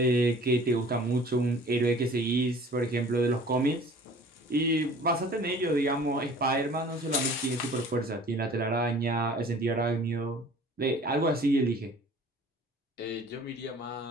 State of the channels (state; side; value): normal; both; correlation 0.48